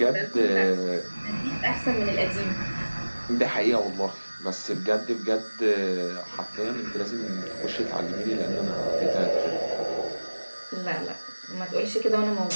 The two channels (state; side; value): inverted; both; correlation -1.00